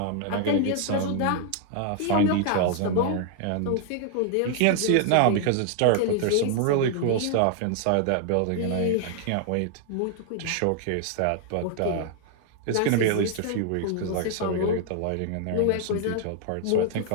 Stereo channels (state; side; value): different; both; correlation 0.00